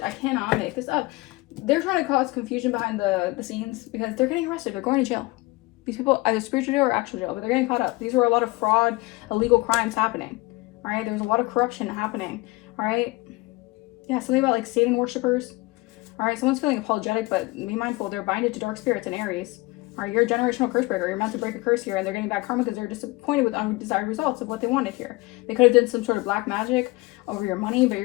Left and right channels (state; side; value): quieter; right; 22.7 dB